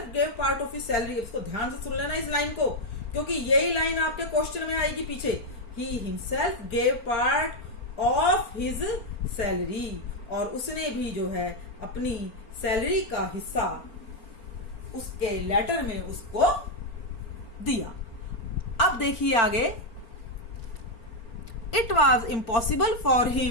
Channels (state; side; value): late; right; 4.4 ms